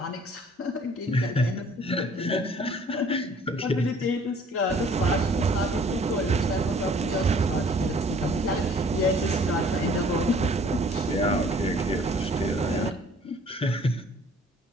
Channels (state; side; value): normal; both; correlation 0.55